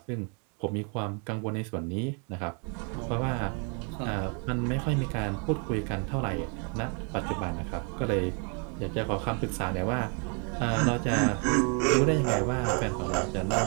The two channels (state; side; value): quieter; left; 37.7 dB